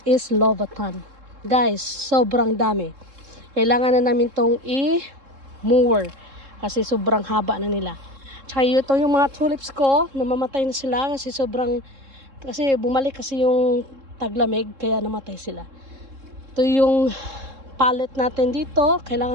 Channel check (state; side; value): late; left; 3.7 ms